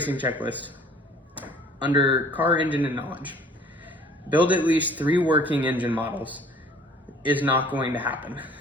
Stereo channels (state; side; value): normal; both; correlation 0.52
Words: checklist, under car, engine, and knowledge, build at least 3 working engine models is not going to happen.